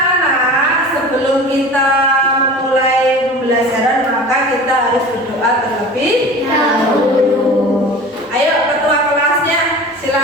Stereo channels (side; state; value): both; normal; correlation 0.38